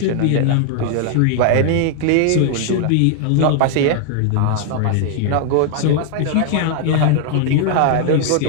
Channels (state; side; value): different; both; correlation 0.00